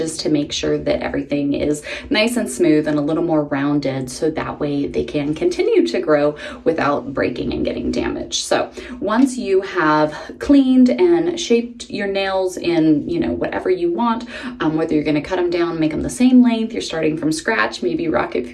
to make sure that everything is nice and smooth and a little more rounded, so that way they can continue to grow without breaking and getting damaged. So once you have cleaned and shaped your nails in, whatever you want, whether you're going to cut them down, make them the same length, you're starting from scratch, maybe Rocket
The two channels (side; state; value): both; identical; correlation 1.00